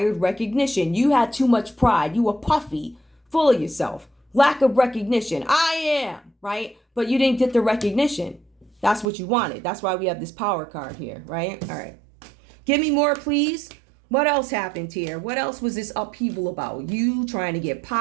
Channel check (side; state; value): left; drops out; at 9.1 s